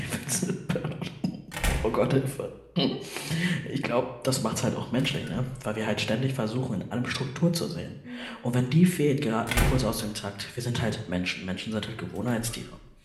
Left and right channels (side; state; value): both; identical; correlation 1.00